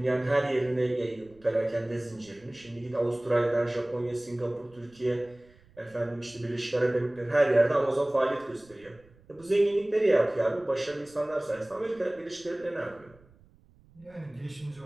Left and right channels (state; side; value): noise; right; rumble, 28 dB below the sound